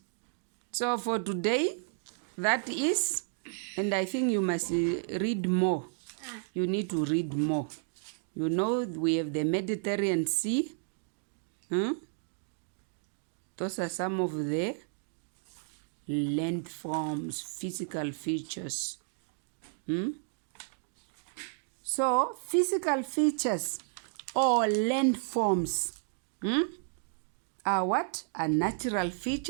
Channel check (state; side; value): silent; left; digital silence